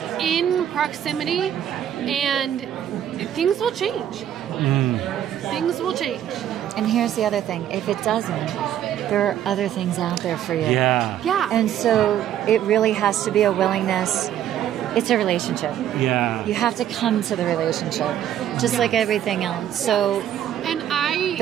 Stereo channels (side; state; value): left; quieter; 10.8 dB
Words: in proximity, and things will change. Things will change. And here's the other thing. If it doesn't, there are other things out there for you. Yeah. Yeah. And so it really has to be a willingness. It's a relationship. Yeah. You have to come to the relationship, just like everything else. So